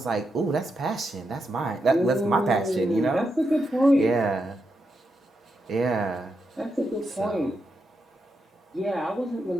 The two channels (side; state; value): both; normal; correlation 0.84